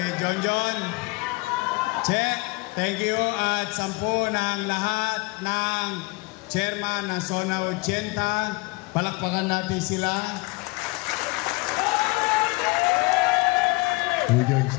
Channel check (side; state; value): right; quieter; 25.2 dB